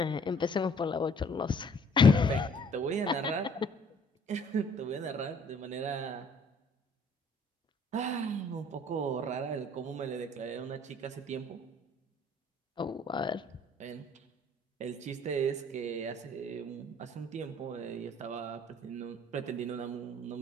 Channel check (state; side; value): normal; both; correlation 0.58